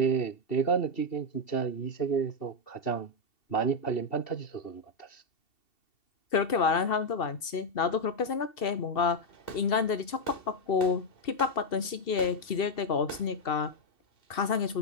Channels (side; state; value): right; late; 2.7 ms